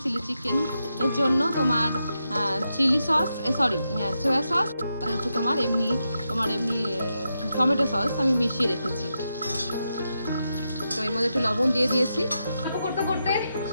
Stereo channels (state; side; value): inverted; both; correlation -0.86